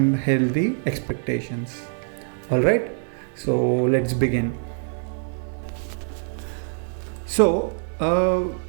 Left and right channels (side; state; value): left; silent; 55 dB below the other